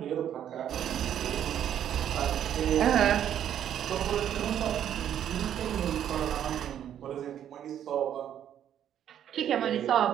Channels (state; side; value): quieter; left; 10.1 dB